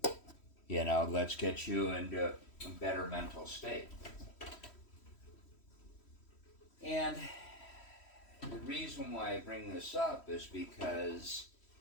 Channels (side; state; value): right; late; 3.1 ms